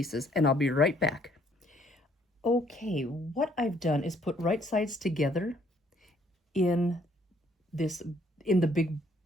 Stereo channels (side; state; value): both; normal; correlation 0.65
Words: and I'll be right back. Okay, what I've done is put right sides together in the big